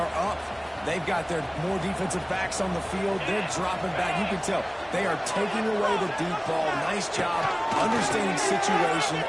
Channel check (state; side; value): identical; both; correlation 1.00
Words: up. They've got their more defensive backs on the field. They're dropping back. You can tell they are taking away the deep ball. Nice job understanding situation,